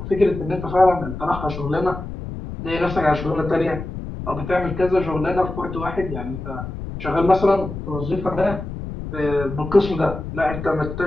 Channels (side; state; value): left; noise; rumble, 8 dB below the sound